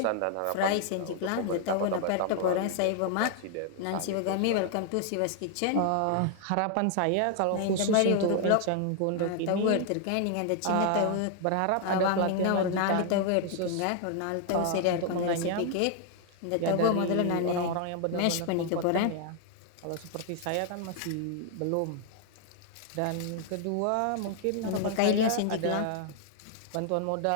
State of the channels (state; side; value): different; both; correlation 0.00